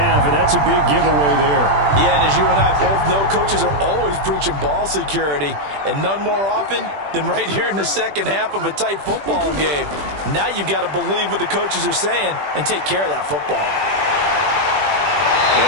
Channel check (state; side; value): late; left; 20 ms